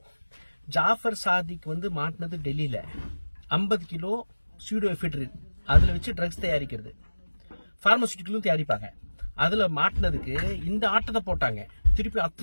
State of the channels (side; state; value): both; inverted; correlation -1.00